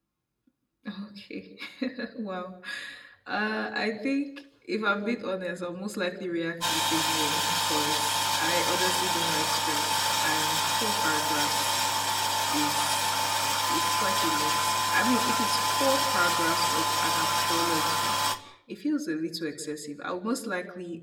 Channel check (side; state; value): both; identical; correlation 1.00